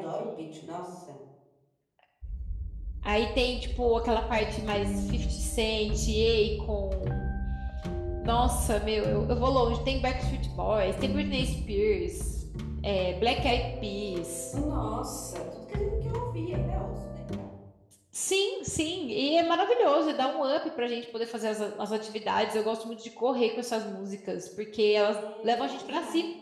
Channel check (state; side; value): identical; both; correlation 1.00